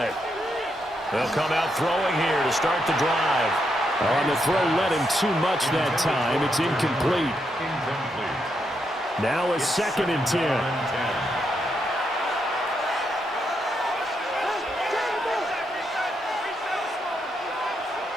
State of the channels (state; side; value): normal; both; correlation 0.80